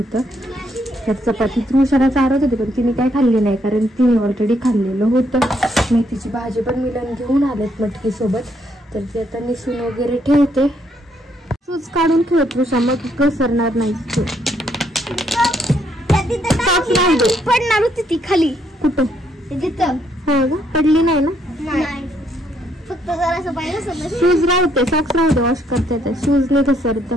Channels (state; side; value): normal; both; correlation 0.72